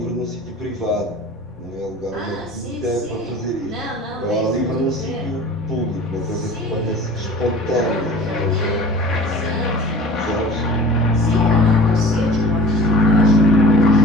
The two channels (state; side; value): normal; both; correlation 0.43